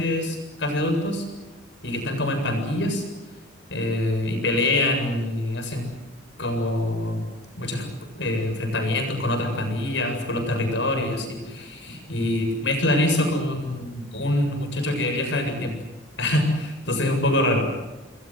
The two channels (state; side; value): normal; both; correlation 0.41